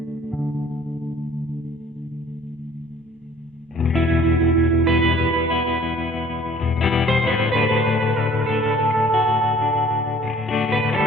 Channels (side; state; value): both; normal; correlation 0.55